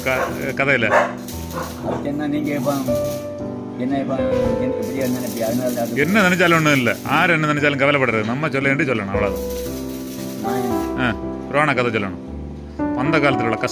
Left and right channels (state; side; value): identical; both; correlation 1.00